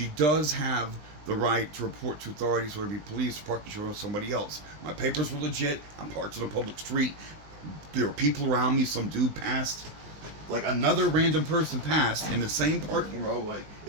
does have the right to report to authorities, whether it be police or parking control or somebody else. My papers were legit. I'm parked on a public street. There are people around me. Some dude passed. Like another random person passed in the same parking row. Like,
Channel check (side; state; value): left; late; 19 ms